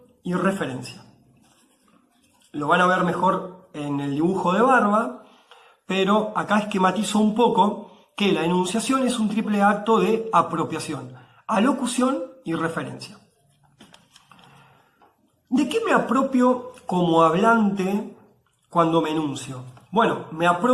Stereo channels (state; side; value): identical; both; correlation 1.00